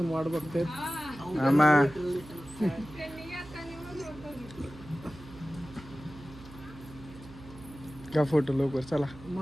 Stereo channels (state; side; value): noise; right; hum, 17 dB below the sound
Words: वाट बघते. मामा घ्या फोटो लवकर चला.